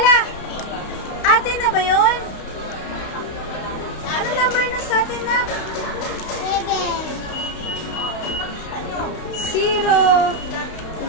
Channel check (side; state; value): right; late; 32 ms